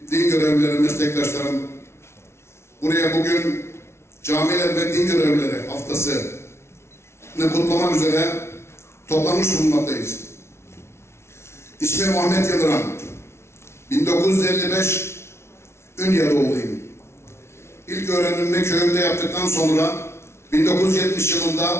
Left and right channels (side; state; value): right; late; 0.13 ms